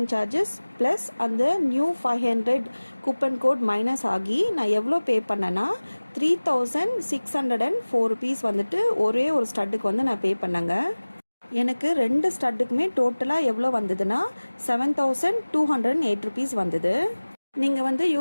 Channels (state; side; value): inverted; both; correlation -1.00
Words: சார்ஜஸ் ப்ளஸ் அந்த நியூ 500 கூப்பன் கோட் மைனஸ் ஆகி நான் எவ்வளோ பே பண்ணேன்னா 3604 ருபீஸ் வந்துட்டு ஒரே ஒரு ஸ்டட்டுக்கு வந்து நான் பே பண்ணேங்க. எனக்கு 2 ஸ்டட்டுக்குமே டோட்டலாக எவ்வளோ வந்ததுன்னா 7208 ருபீஸ் வந்தது. நீங்கள் வந்து